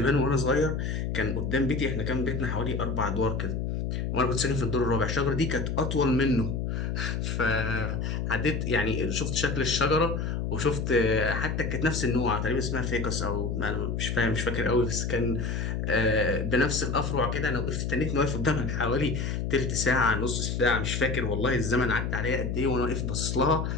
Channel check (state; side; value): noise; left; hum, 1 dB below the sound